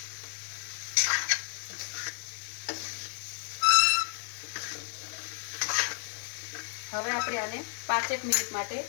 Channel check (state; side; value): silent; right; digital silence